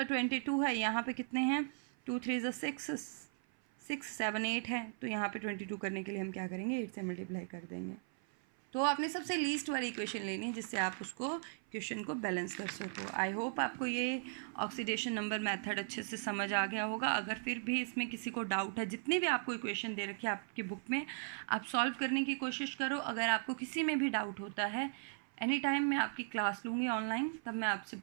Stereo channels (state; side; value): silent; left; 53 dB below the other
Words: 22 है, यहाँ पे कितने हैं 2 3 6 6 7 8 है, तो यहाँ पे 22 करने के लिए हम क्या करेंगे 8 से मल्टीप्लाई कर देंगे, तो आपने सबसे लीस्ट वाली इक्वेशन लेनी है जिससे आप उसको क्वेश्चन को बैलेंस कर सको। आई होप आपको ये ऑक्सीडेशन नंबर मेथड अच्छे से समझ आ गया होगा। अगर फिर भी इसमें किसी को डाउट है, जितनी भी आपको इक्वेशन दे रखी है आपकी बुक में, आप सॉल्व करने की कोशिश करो। अगर आपको किसी में भी डाउट होता है, एनी टाइम मैं आपकी क्लास लूँगी ऑनलाइन, तब मैं आपसे